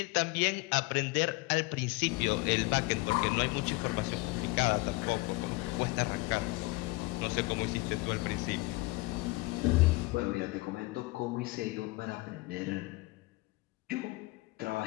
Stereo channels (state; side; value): quieter; right; 22.9 dB